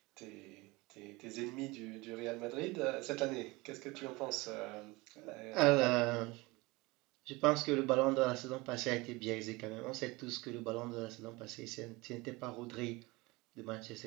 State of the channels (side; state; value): left; quieter; 23.3 dB